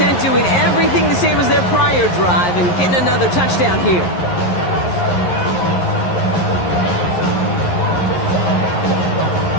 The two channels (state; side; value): late; right; 11 ms